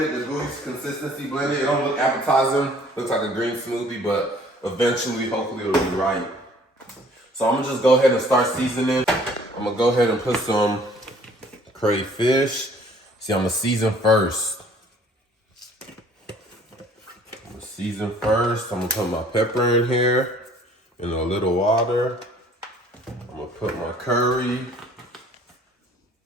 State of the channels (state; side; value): normal; both; correlation 0.56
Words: the gooey consistency blended. It don't look appetizing, looks like a green smoothie, but eventually, hopefully it'll be right. So I'm gonna just go ahead and start seasoning. I'm gonna go ahead and put some crayfish. See, I'm gonna season first. I'm gonna put my pepper in here in a little water. I'm gonna put my curry.